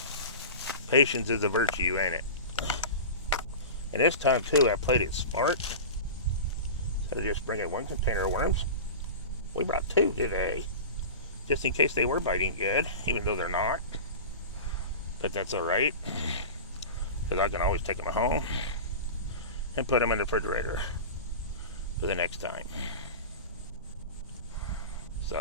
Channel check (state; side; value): inverted; both; correlation -0.30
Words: Patience is a virtue, ain't it? And this time, too, I played it smart. Instead of just bringing one container of worms, we brought two today. Just in case they were biting good, even though they're not. But that's all right. Because I can always take them home and put them in the refrigerator for the next time.